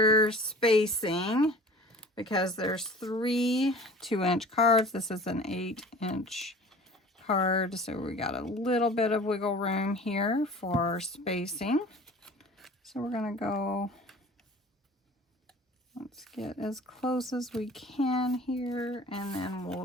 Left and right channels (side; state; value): both; normal; correlation 0.43